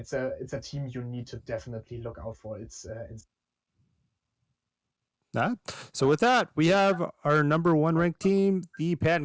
a team you need to definitely look out for. It's Nah. So with that, we have our number 1 ranked team, the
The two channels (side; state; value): both; identical; correlation 1.00